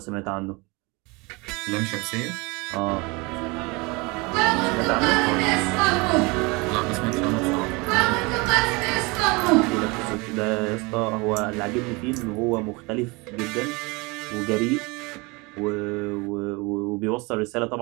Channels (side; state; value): left; quieter; 26.7 dB